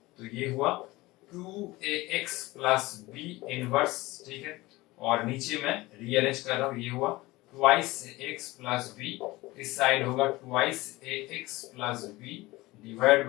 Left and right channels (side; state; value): right; quieter; 20.1 dB